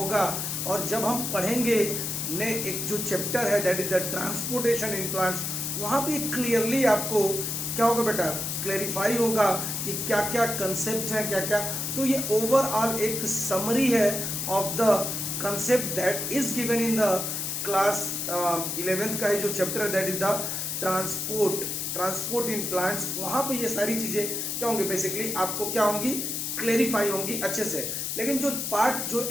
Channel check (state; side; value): noise; left; hiss, 2 dB below the sound